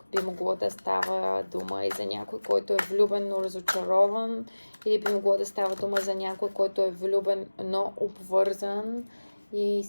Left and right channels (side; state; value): both; inverted; correlation -1.00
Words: би могло да става дума и за някой, който е влюбен, но разочарован. Или би могло да става дума за някой, който е влюбен, но обвързан и